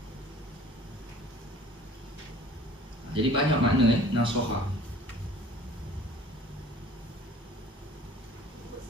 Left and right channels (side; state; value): both; normal; correlation 0.49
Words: Jadi banyak makna nasihat.